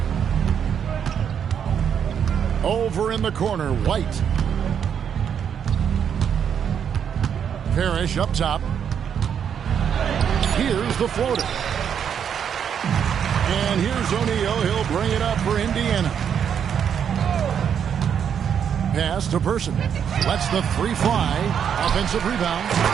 Over in the corner, White. Parrish up top. Here's the floater. And here's O'Neal. He'll bring it up for Indiana. Pass to Person. Lets the 3 fly. Offensive rebound.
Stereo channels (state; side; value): quieter; left; 8.1 dB